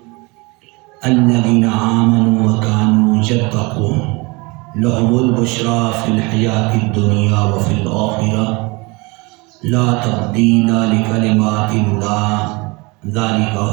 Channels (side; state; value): left; quieter; 26.4 dB